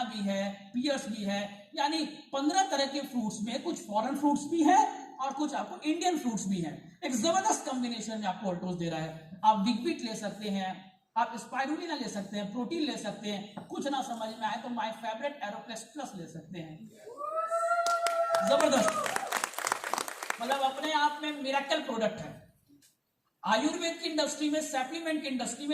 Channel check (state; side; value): identical; both; correlation 1.00